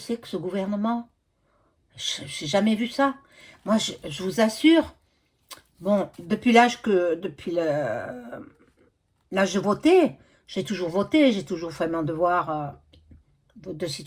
que ce gouvernement? Je n'ai jamais vu ça. Moi, je vous assure, bon, l'âge de voter, j'ai toujours fait mon devoir de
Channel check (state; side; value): identical; both; correlation 1.00